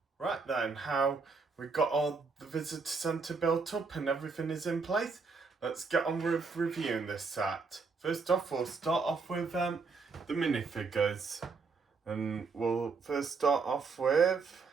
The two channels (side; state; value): left; quieter; 4.6 dB